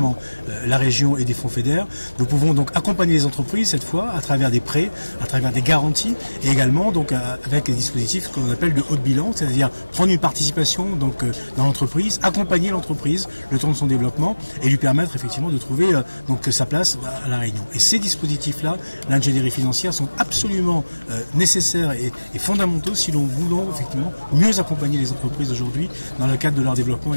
la région et des fonds FEDER, nous pouvons donc accompagner les entreprises cette fois à travers des prêts, à travers des garanties et également donc avec des dispositifs qu'on appelle de haut de bilan, c'est-à-dire prendre une participation donc dans l'entreprise, accompagner l'entreprise le temps de son développement et lui permettre effectivement de trouver donc sa place à la Réunion. Et ces dispositifs-là, l'ingénierie financière, sont absolument nécessaires et fondamentaux si l'on voulait effectivement mieux accompagner les entreprises aujourd'hui dans le cadre de leur développement et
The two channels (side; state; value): both; inverted; correlation -1.00